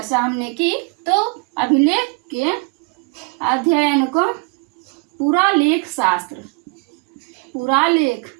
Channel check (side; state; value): left; quieter; 29.4 dB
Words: हमने की तो अभिलेख के अध्ययन को पुरालेख शास्त्र, पुरालेख